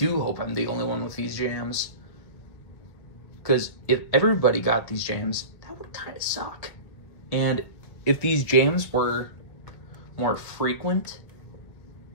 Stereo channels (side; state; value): right; late; 1.6 ms